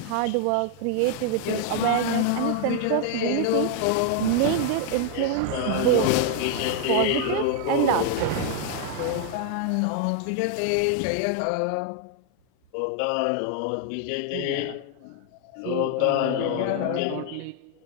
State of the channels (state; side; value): different; both; correlation 0.00